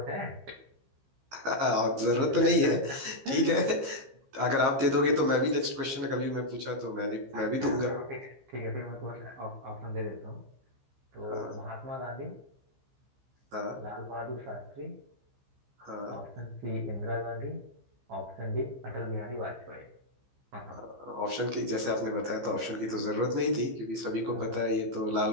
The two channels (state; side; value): late; left; 15 ms